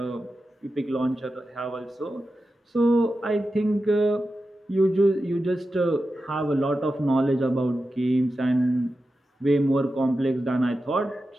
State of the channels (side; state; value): both; normal; correlation 0.91